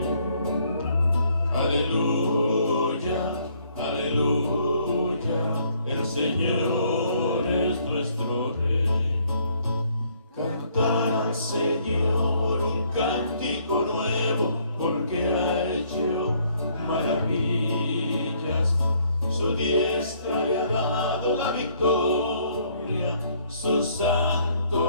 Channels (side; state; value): both; inverted; correlation -0.66